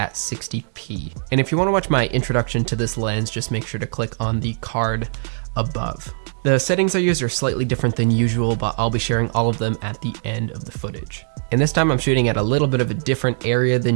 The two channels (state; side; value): silent; left; digital silence